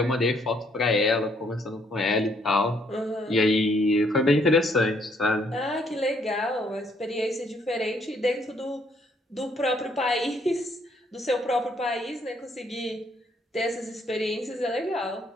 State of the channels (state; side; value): normal; both; correlation 0.68